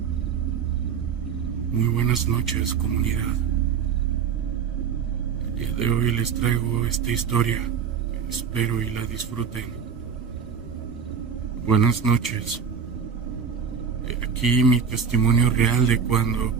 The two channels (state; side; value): quieter; left; 6.7 dB